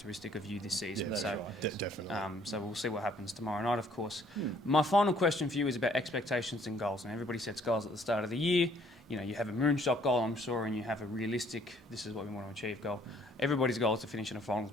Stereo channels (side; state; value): both; normal; correlation 0.62